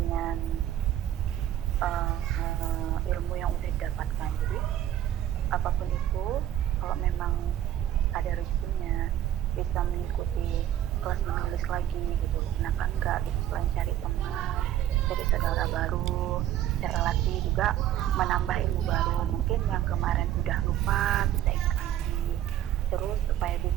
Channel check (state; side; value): quieter; left; 11.9 dB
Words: ilmu yang udah didapatkan. Jadi apapun itu, kalau memang ada rezekinya bisa mengikuti kelas menulis lagi gitu, kenapa enggak gitu, selain cari teman, cari saudara baru, cari relasi juga, menambah ilmu baru, mungkin yang kemarin udah lupa bisa ingat lagi, terus supaya